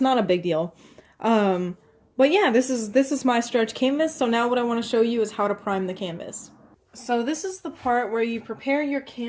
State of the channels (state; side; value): identical; both; correlation 1.00